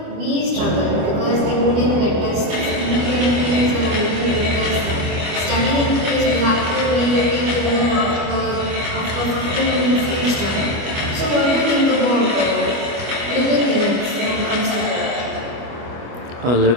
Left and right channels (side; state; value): left; late; 25 ms